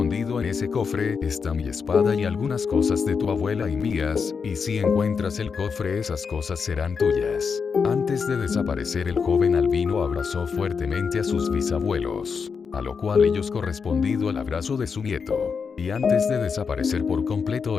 En ese cofre está mi espada y algunas cosas de tu abuela y mías, y si encuentras el cofre, esas cosas serán tuyas. Antes de desaparecer, el joven albino abrazó fuertemente a sus bisabuelos, a lo cual ellos correspondido al abrazo de su nieto. Y antes de desaparecer por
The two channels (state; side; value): quieter; right; 5.8 dB